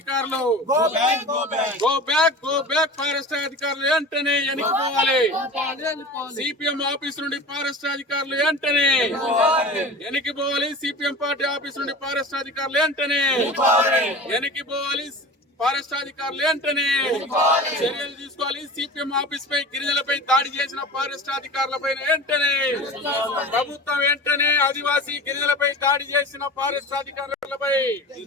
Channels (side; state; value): both; normal; correlation 0.35